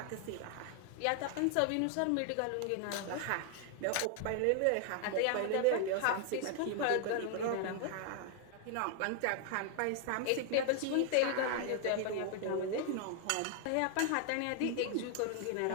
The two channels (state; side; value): different; both; correlation 0.00